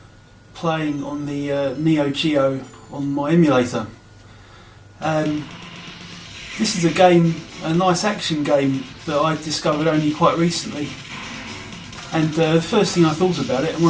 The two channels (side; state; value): both; identical; correlation 1.00